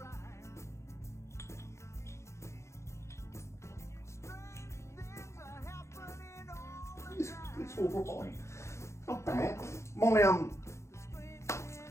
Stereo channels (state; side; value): late; right; 0.14 ms